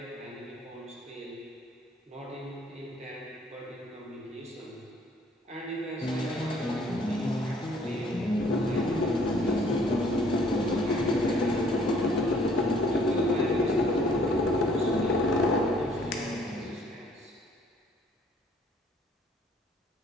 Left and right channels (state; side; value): normal; both; correlation 0.60